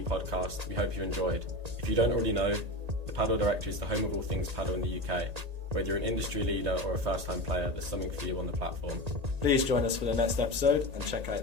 Podcast. We hope you enjoyed. If you don't already know, the Padel Directory is the home of all things paddle in the UK. Whether you're an industry leader or a first-time player, there's something for you on the platform. Please join us for the next episode and check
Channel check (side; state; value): left; late; 1.8 ms